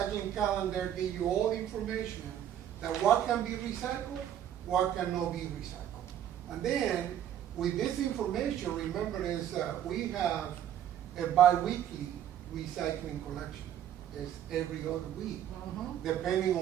calendar gives you all the information that what can be recycled, what cannot be recycled. And then, with this information, remember we have a bi-weekly recycling collection. It's every other week. Mhm. Depending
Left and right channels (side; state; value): left; quieter; 10.6 dB